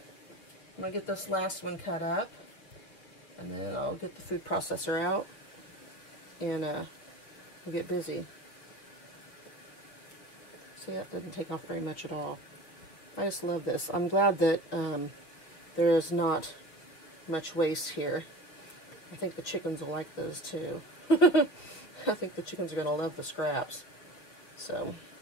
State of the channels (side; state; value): right; late; 6.9 ms